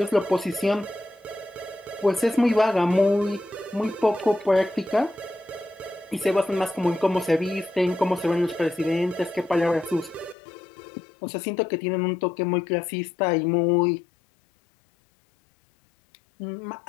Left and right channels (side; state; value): right; drops out; at 10.4 s